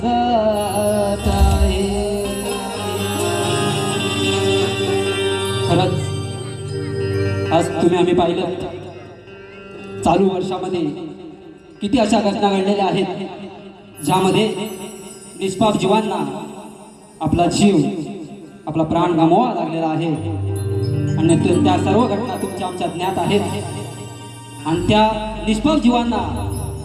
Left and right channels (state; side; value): identical; both; correlation 1.00